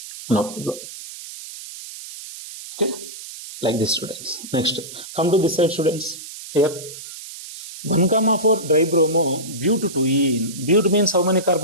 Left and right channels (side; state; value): right; noise; hiss, 13 dB below the sound